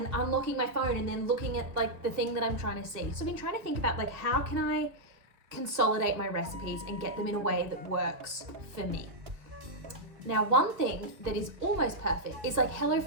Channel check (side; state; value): left; late; 2.5 ms